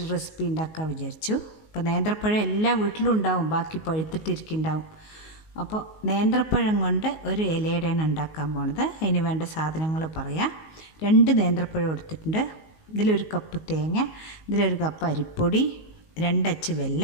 റെസിപ്പി ഉണ്ടാക്കാൻ വിചാരിച്ചു. അപ്പോൾ നേന്ത്രപ്പഴം എല്ലാ വീട്ടിലും ഉണ്ടാവും, ബാക്കി പഴുത്തിട്ടിരിക്കുന്നുണ്ടാവും. അപ്പോൾ നേന്ത്രപ്പഴം കൊണ്ട് ഒരു ഇലയുടെയാണ് ഉണ്ടാക്കാൻ പോണത്. അതിന് വേണ്ട സാധനങ്ങൾ പറയാം. 2 നേന്ത്രപ്പഴം എടുത്തിട്ടുണ്ട്. ഇതിലൊരു കപ്പ് തേങ്ങ, ഇതിലൊരു കപ്പ് അരിപ്പൊടി, 2 അച്ച്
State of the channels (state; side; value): late; right; 19 ms